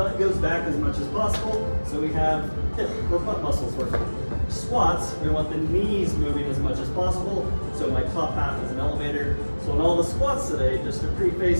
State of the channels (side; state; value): both; inverted; correlation -1.00